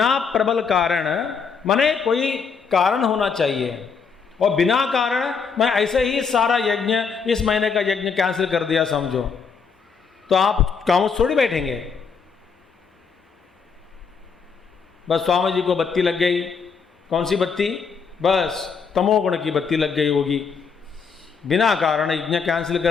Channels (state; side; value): quieter; right; 5.7 dB